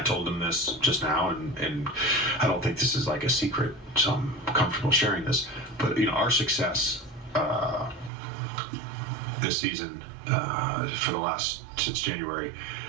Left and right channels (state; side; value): drops out; left; at 8.1 s